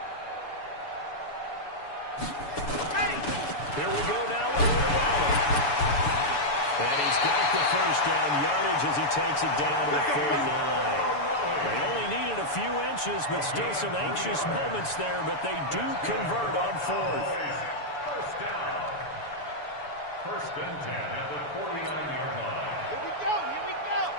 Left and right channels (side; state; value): right; late; 6.9 ms